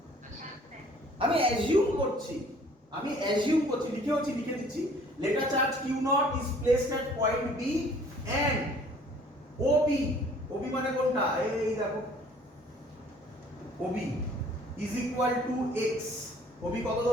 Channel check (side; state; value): both; normal; correlation 0.55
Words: আমি অ্যাজিউম করছি, লিখে দিচ্ছি। Late a charge Q0 is placed at point B and OB মানে কোনটা? এই দেখো, OB is equal to x. OB কত